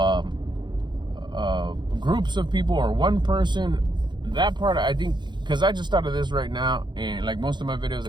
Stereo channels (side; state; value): left; late; 0.22 ms